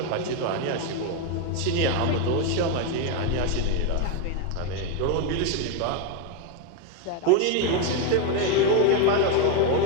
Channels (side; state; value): both; different; correlation 0.02